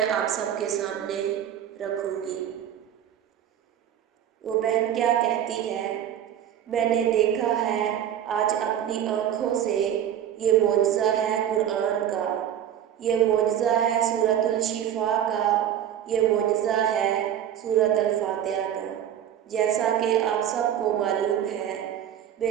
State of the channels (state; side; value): quieter; left; 10.2 dB